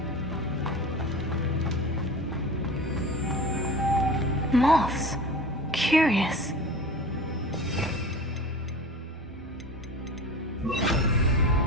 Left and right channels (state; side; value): normal; both; correlation 0.34